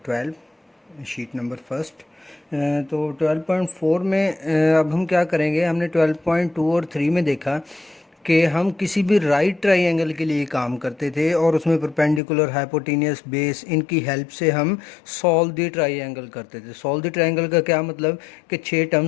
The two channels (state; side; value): drops out; right; at 12.2 s